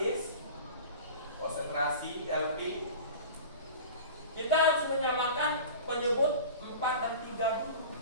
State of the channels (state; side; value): inverted; both; correlation -0.37